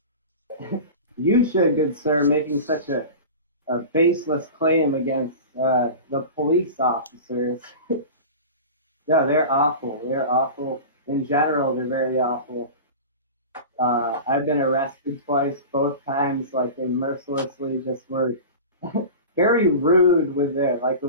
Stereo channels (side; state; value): both; inverted; correlation -0.32